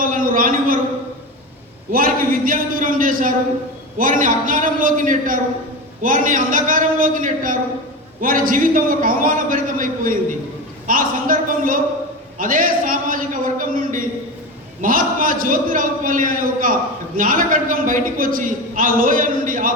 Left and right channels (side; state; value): both; normal; correlation 0.23